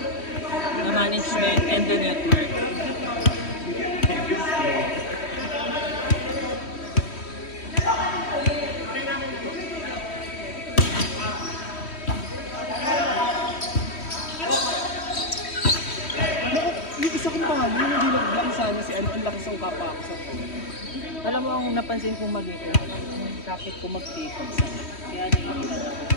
The management and the network. Yung isa kong palo, yung hindi nag-block sana si ano, ang lakas ng kapa ako sa phone. Alam mo, ang napansin kong mali ko, kapit ko mag-take sa. Kaya naiilan ako.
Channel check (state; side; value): late; right; 3.1 ms